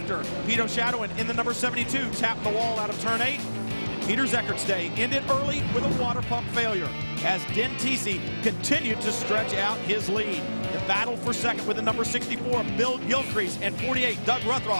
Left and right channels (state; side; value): inverted; both; correlation -1.00